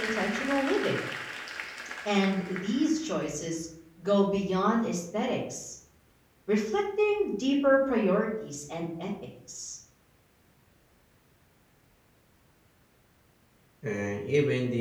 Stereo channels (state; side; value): identical; both; correlation 1.00